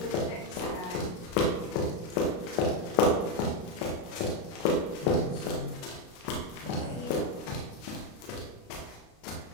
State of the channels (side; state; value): right; late; 33 ms